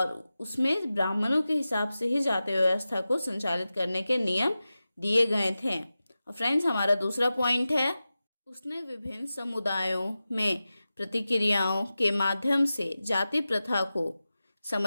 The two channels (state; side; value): inverted; both; correlation -0.94